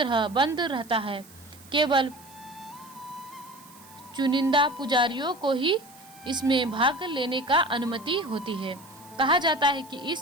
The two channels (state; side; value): noise; right; hiss, 23 dB below the sound